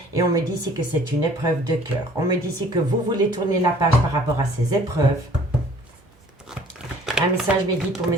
et on me dit ici que c'est une épreuve de cœur. On me dit ici que vous voulez tourner la page par rapport à ces épreuves. Un message me dit pour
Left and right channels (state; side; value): normal; both; correlation 0.53